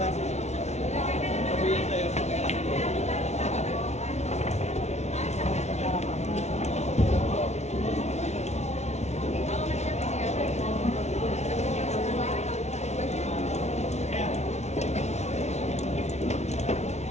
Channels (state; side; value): late; right; 0.32 ms